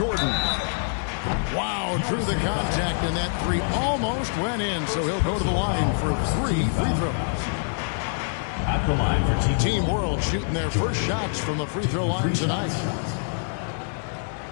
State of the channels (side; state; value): right; silent; digital silence